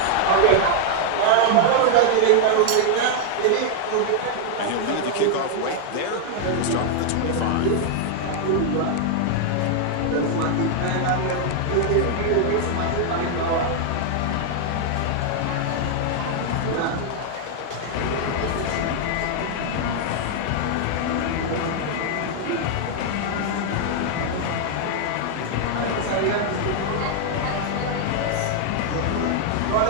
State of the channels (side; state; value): both; different; correlation 0.00